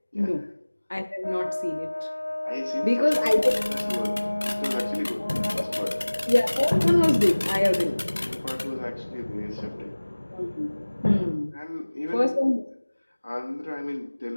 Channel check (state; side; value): inverted; both; correlation -1.00